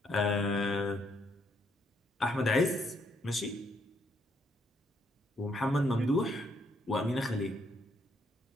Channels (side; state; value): both; normal; correlation 0.72